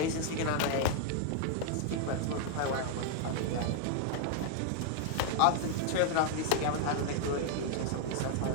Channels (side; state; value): both; different; correlation 0.00